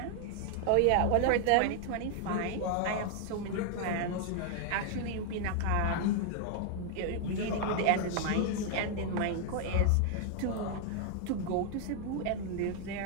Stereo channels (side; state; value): both; different; correlation 0.00